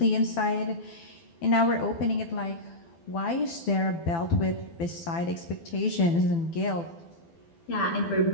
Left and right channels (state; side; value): late; right; 12 ms